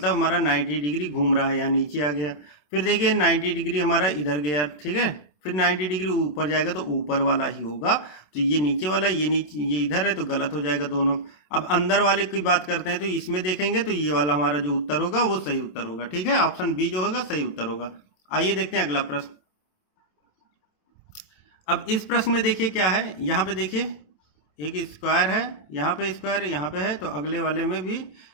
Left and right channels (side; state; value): right; late; 27 ms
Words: हमारा 90 डिग्री घूम रहा है, यहाँ नीचे आ गया, फिर देखिए 90 डिग्री हमारा इधर गया। ठीक है, फिर 90 डिग्री ऊपर जाएगा तो ऊपर वाला ही होगा, तो ये नीचे वाला, ये नीचे, ये इधर है तो गलत हो जाएगा दोनों। अब अंदर वाले की बात करते हैं तो इसमें देखेंगे तो ये वाला हमारा जो उत्तर होगा वो सही उत्तर होगा। ठीक है, ऑप्शन बी जो होगा सही उत्तर होगा। आइए देखते हैं अगला प्रश्न। अब इस प्रश्न में देखिए क्या है, यहाँ पे देखिए एक स्क्वायर है, यहाँ पे स्क्वायर यहाँ पे है, तो अगले वाले में भी